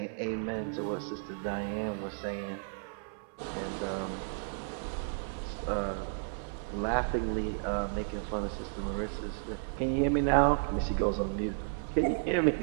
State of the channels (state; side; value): silent; left; 56 dB below the other